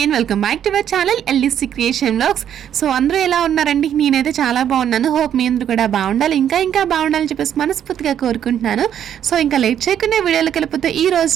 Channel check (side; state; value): left; quieter; 9.7 dB